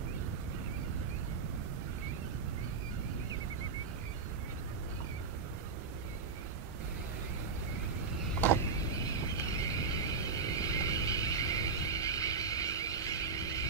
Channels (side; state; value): left; quieter; 4.7 dB